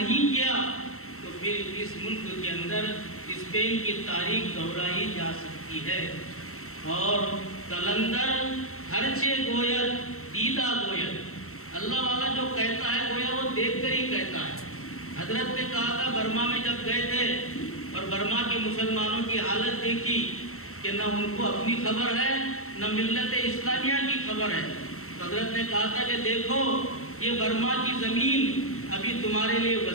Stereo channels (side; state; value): right; late; 0.63 ms